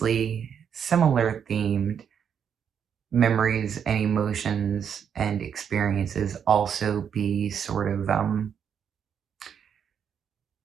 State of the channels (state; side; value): quieter; left; 7.8 dB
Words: similar themed memories and emotions and experiences also be sort of